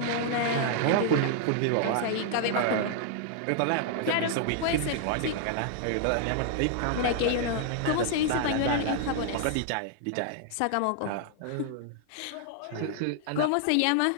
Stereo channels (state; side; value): different; both; correlation -0.01